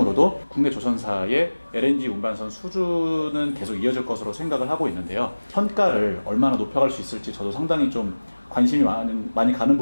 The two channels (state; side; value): inverted; both; correlation -1.00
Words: 국내 조선사의 LNG 운반선 수주는 계속 이어질 것으로 생각을 하고 있는데요. 선가를 얼마나 높여갈 수 있을지 저도 상당히 좀 관심이 많이 가는